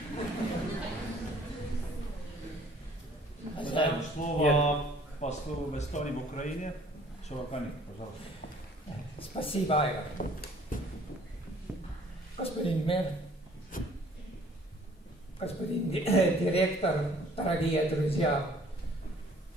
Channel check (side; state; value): both; normal; correlation 0.56